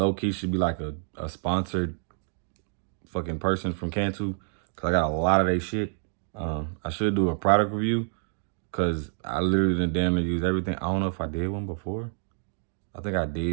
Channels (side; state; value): left; silent; digital silence